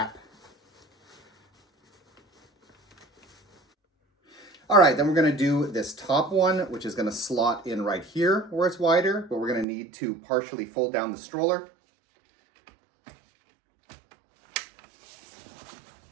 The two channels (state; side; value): drops out; left; at 9.7 s